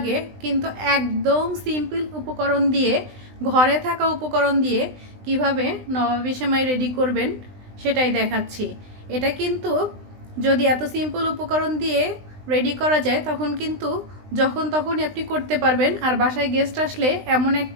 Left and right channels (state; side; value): late; left; 20 ms